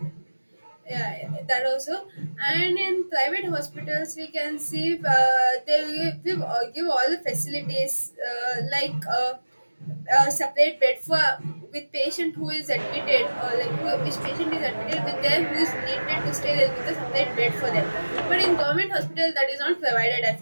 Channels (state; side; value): inverted; both; correlation -1.00